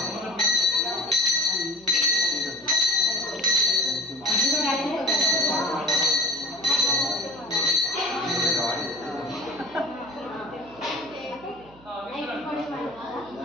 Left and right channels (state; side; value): noise; right; hum, 25 dB below the sound